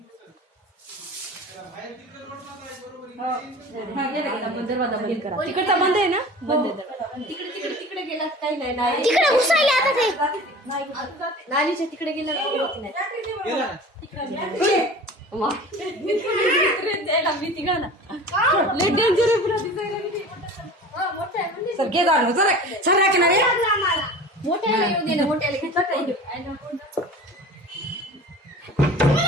घुसल. त्याला बाहेर तिकडे रोड मारला आहे बरोबर इकडे येऊन हा गेला आपण दरवाजा बंद करा तिकडचा बंद आहे ना बंद आहे तिकडे गेला काही नाही तिकडे घुसायला आता ते नालीच्या तिकडे गेला गेला ना. भीती गा ना डेंजर सर घे जाणं जरा सर की नाही मोठ्याला येऊ दे ना मोठ्याला घेतलं काही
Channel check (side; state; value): both; normal; correlation 0.39